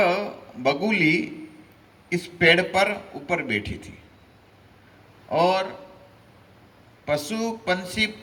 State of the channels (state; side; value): identical; both; correlation 1.00